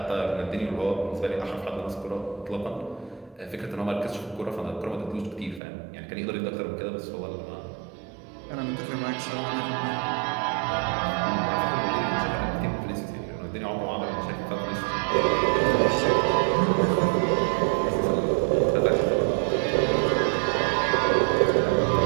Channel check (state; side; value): drops out; left; at 5.6 s